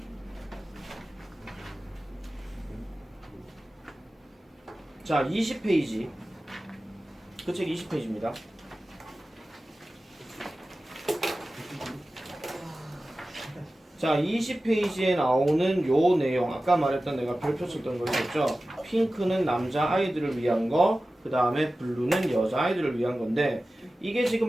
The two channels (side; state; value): both; normal; correlation 0.95